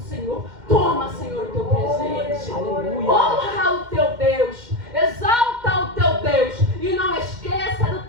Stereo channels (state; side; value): late; left; 2.1 ms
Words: Toma, Senhor, o teu presente. Aleluia. Honra o teu Deus. Exalta o teu Deus. E não esqueça do